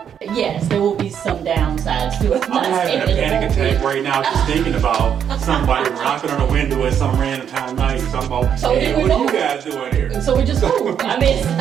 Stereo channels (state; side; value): quieter; left; 8.4 dB